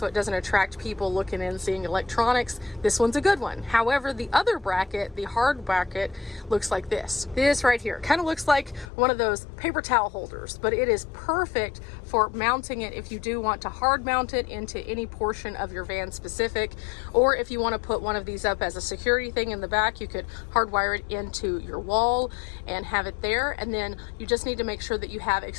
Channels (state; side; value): drops out; right; at 8.8 s